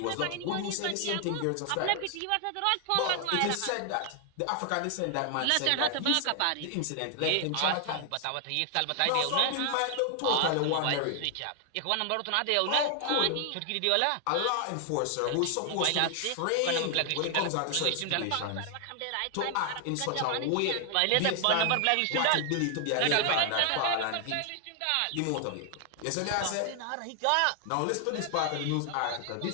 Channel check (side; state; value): both; different; correlation 0.00